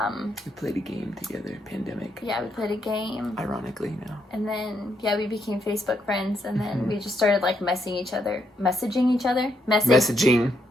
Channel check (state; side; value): normal; both; correlation 0.77